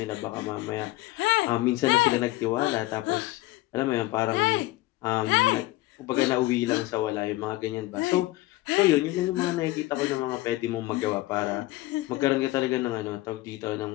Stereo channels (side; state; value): right; quieter; 18.4 dB